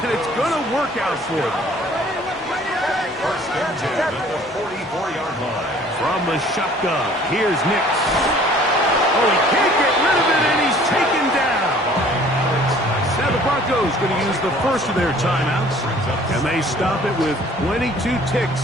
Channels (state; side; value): normal; both; correlation 0.53